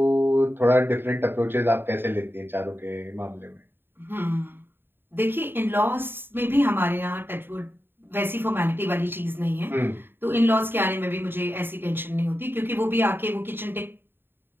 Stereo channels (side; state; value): left; late; 0.10 ms